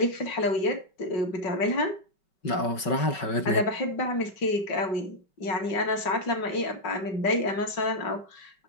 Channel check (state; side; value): late; right; 5.2 ms